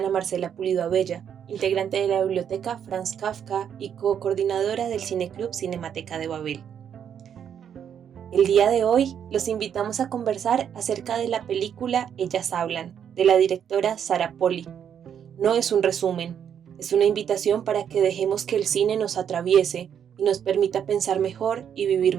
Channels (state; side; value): quieter; left; 8.5 dB